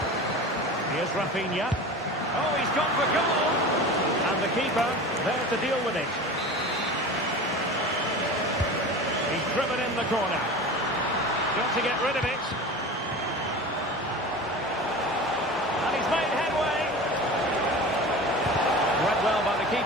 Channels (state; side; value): normal; both; correlation 0.33